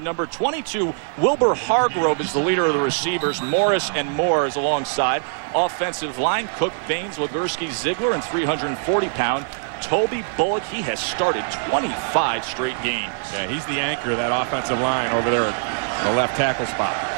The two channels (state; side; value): silent; left; digital silence